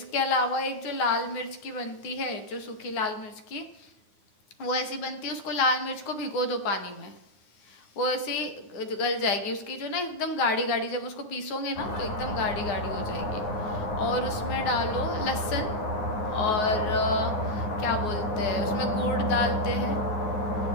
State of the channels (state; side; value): late; right; 9.5 ms